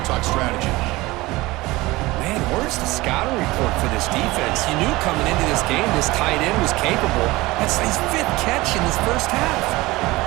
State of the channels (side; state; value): left; quieter; 20.4 dB